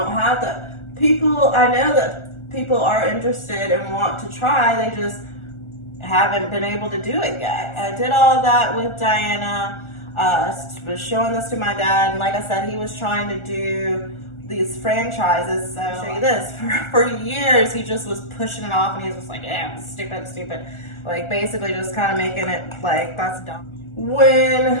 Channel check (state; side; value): late; right; 1.4 ms